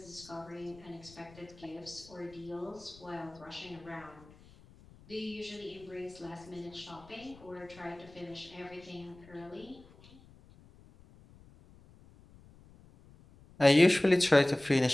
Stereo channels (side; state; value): left; noise; rumble, 23 dB below the sound